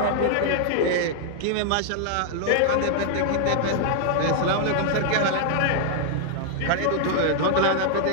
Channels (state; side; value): different; both; correlation -0.01